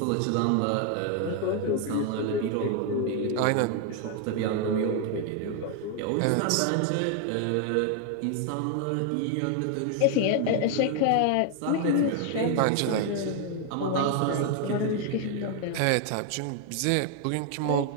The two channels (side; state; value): both; different; correlation 0.00